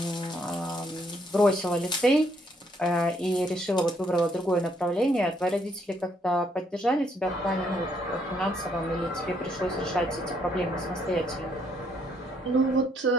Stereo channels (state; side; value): normal; both; correlation 0.70